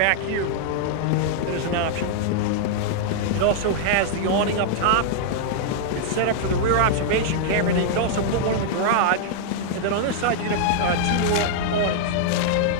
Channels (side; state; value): both; different; correlation -0.01